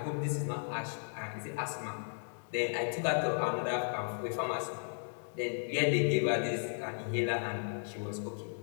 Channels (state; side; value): silent; right; digital silence